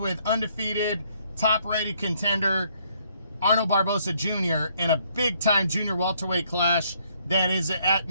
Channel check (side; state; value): both; inverted; correlation -0.68